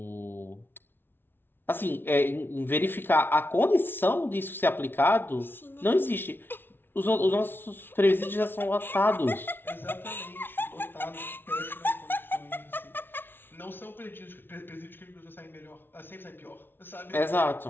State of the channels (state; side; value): late; right; 0.10 ms